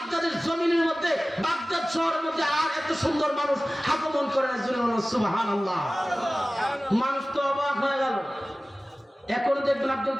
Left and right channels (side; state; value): both; normal; correlation 0.97